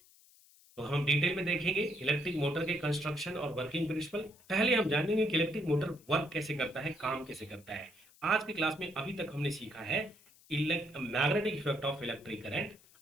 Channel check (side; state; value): left; noise; hiss, 27 dB below the sound